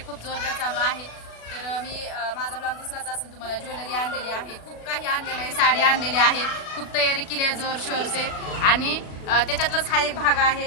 खूप जोरदार चालू आहे। तर मी माझा ब्लॉग दिसलाच असेल तुम्हाला, ज्वेलरी आणलेली आहे, खूप काही आणलेलं आहे, साडी आणलेली आहे, खूप तयारी केली आहे जोर शोरसे। आणि त्याच्यातलाच हा एक भाग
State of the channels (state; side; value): late; right; 36 ms